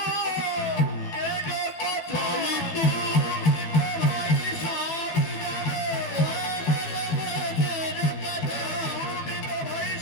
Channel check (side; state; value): right; late; 12 ms